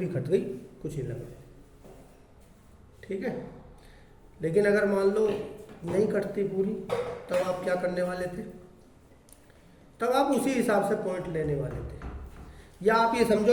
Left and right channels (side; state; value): both; identical; correlation 1.00